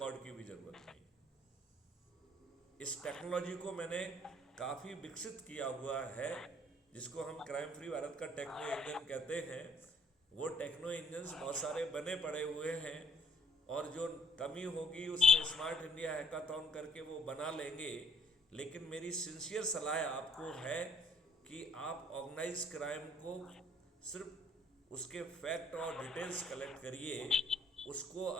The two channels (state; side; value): normal; both; correlation 0.62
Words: की भी ज़रूरत नहीं है। इस टेक्नोलॉजी को मैंने काफ़ी विकसित किया हुआ है, जिसको हम क्राइम फ्री भारत का टेक्नो इंजन कहते हैं। वो टेक्नो इंजन्स बहुत सारे बने पड़े हुए हैं और जो कमी होगी उसमें स्मार्ट इंडिया हैकाथॉन करके वो बना लेंगे। लेकिन मेरी सिंसियर सलाह आपको है कि आप ऑर्गेनाइज क्राइम को सिर्फ उसके फैक्ट और डिटेल्स कलेक्ट करिए, उसको